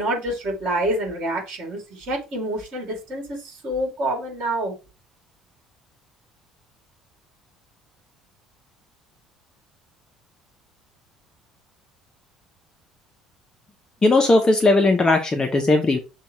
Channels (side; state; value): both; normal; correlation 0.72